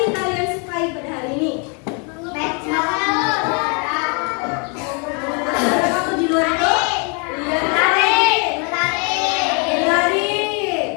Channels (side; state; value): right; quieter; 35.4 dB